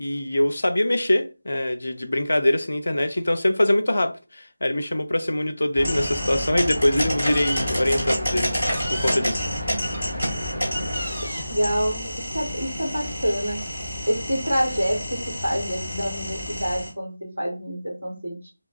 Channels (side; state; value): both; inverted; correlation -0.96